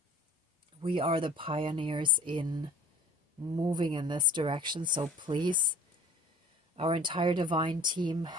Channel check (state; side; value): normal; both; correlation 0.47